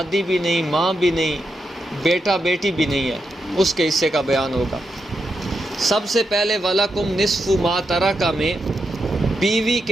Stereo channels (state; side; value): normal; both; correlation 0.84